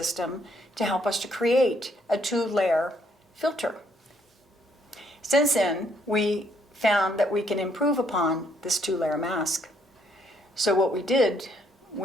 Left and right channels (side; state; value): both; normal; correlation 0.69